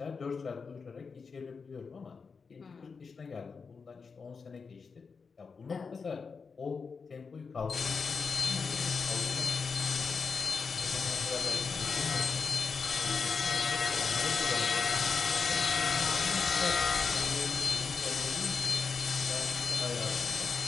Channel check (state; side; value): quieter; right; 5.2 dB